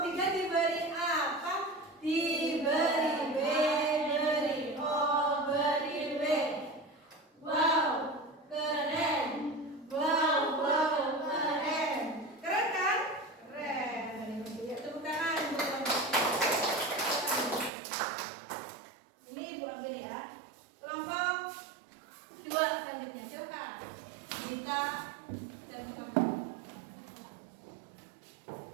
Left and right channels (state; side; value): drops out; left; at 17.7 s